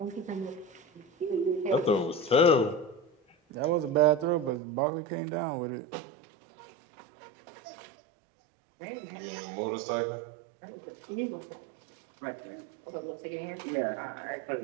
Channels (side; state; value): left; drops out; at 4.6 s